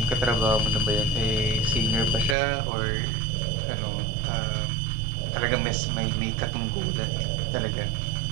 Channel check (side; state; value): left; drops out; at 2.4 s